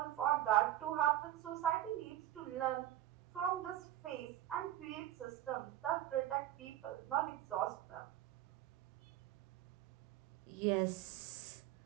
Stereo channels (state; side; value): quieter; left; 13.2 dB